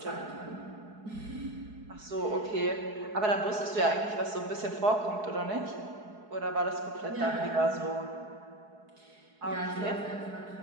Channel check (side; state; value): left; late; 4.7 ms